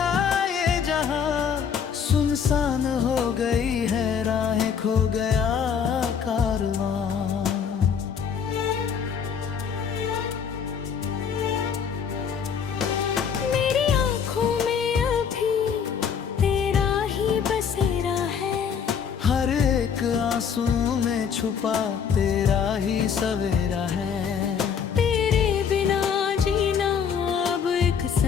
ये जहां, सुनसान हो गई है राहें, खो गया कारवां। मेरी आँखों में अभी तेरा ही बसेरा है, हर एक आंसू में छुपा तेरा ही सवेरा है।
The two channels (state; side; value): quieter; right; 7.1 dB